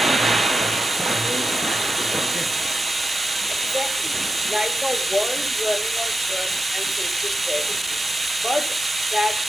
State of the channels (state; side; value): normal; both; correlation 0.90